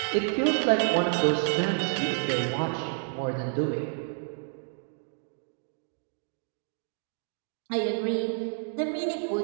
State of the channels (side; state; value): left; silent; digital silence